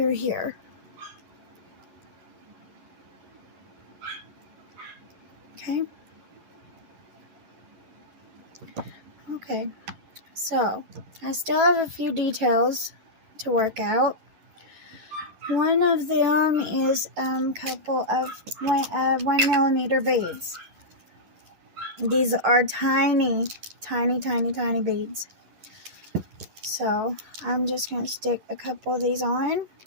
here. Okay. Okay. So I still have a few details to work out. One of them is a couple of 1mm beads. These are tiny, tiny, tiny, tiny beads. So I'm just going to stick a couple of these on.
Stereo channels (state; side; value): late; left; 11 ms